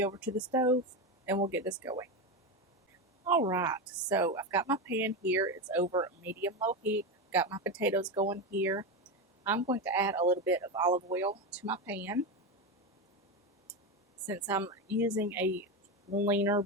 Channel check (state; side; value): normal; both; correlation 0.15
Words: over to the stove, and we'll get this going. Alright, so I've got my pan here. It's over medium-low heat. Got my potatoes going here. I'm going to add a little bit of olive oil to my pan. Since I'm using a leaner